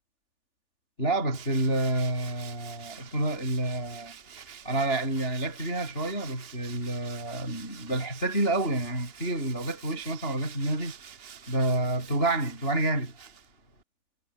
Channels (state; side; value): late; right; 3.4 ms